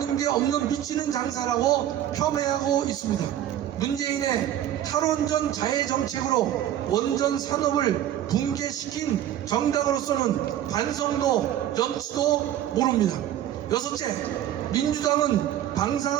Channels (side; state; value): left; quieter; 11.7 dB